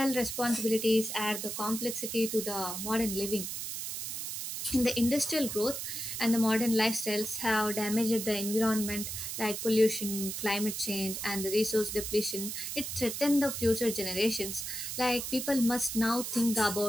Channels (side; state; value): right; noise; hiss, 5 dB below the sound